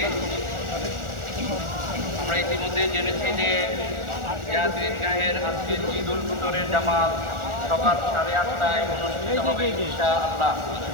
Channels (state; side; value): late; left; 1.4 ms